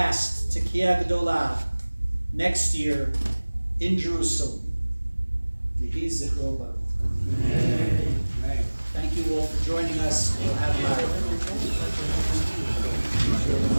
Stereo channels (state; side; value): inverted; both; correlation -1.00